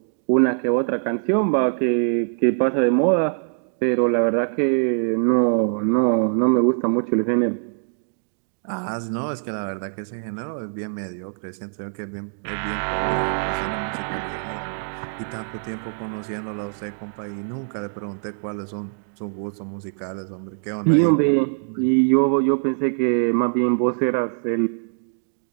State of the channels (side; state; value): left; silent; digital silence